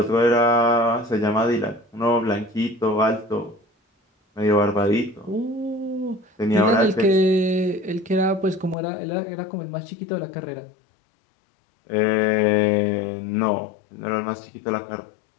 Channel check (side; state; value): right; drops out; at 8.8 s